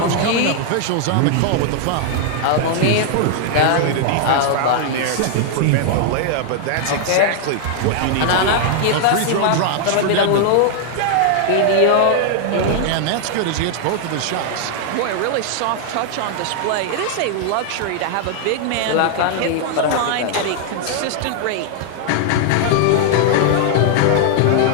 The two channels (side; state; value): both; different; correlation 0.00